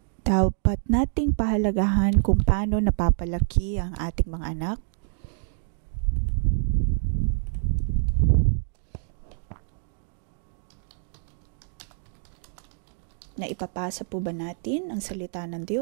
Dapat nating pahalagahan kung paano napapalaki ang ating mga anak. Na ipapasa po ba natin ang salita ng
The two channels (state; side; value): silent; left; digital silence